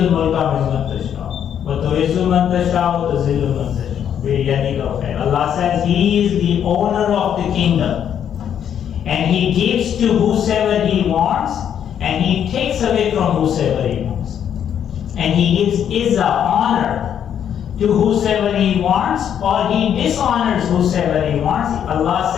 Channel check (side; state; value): right; quieter; 9.1 dB